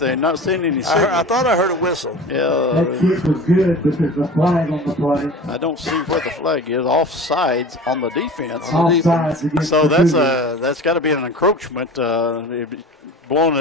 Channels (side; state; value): both; normal; correlation 0.37